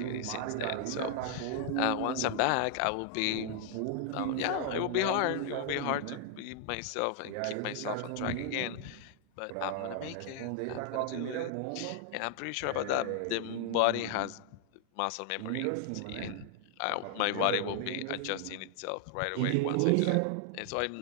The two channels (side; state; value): both; different; correlation 0.00